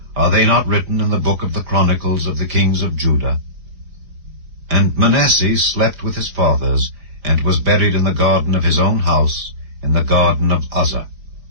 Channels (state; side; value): late; left; 4.9 ms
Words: are they not written in the book of the Chronicles of the kings of Judah? And Manasseh slept with his fathers, and was buried in the garden of his own house, in the garden of Uzzah.